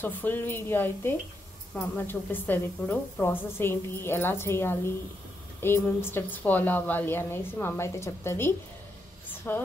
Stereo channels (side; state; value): both; normal; correlation 0.81